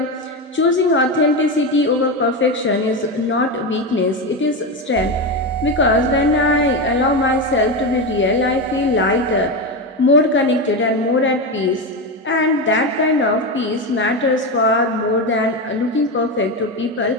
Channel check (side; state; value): both; normal; correlation 0.15